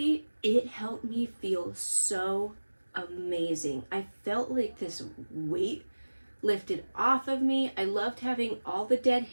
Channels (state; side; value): inverted; both; correlation -1.00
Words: it helped me feel so amazing. I felt like this weight lifted off of me. I loved having all the dead